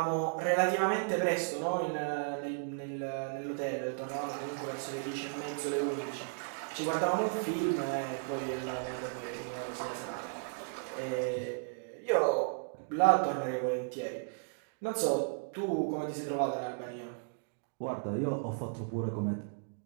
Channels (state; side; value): silent; left; digital silence